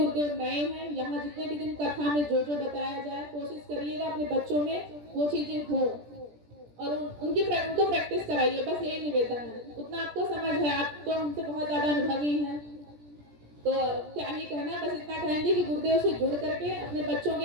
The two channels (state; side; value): late; left; 17 ms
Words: नए हैं, यहाँ जितने भी दिन कथा में जो बताया जाए, कोशिश करिएगा अपने बच्चों में वो चीजें हो और उनको प्रैक्टिस कराइए। बस यही निवेदन है। उतना आपको समझ है, आप तो हमसे बहुत ज्यादा अनुभवी हैं, तो क्या ही कहना, बस इतना कहेंगे कि गुरुदेव से जुड़ करके अपने बच्चों के